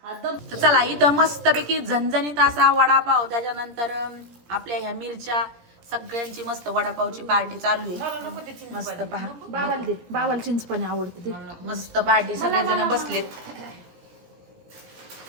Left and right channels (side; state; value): left; late; 17 ms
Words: हा दम तर चला इथं मस्तपैकी झणझणीत असा वडापाव, त्याच्यानंतर आपल्या ह्या मिरच्या, सगळ्यांची मस्त वडापावची पार्टी चालू आहे. मस्त पहा, बाबाला दे, बाबाला चिंचपाणी आवडते ते. मस्त पार्टी, सगळेजण बसलेत.